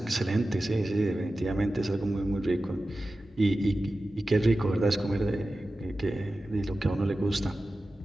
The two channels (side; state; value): both; normal; correlation 0.94